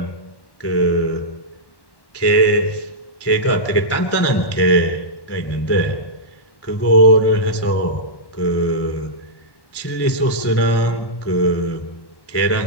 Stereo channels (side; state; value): right; late; 1.1 ms